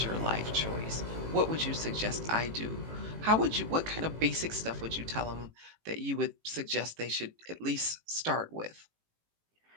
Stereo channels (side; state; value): left; late; 18 ms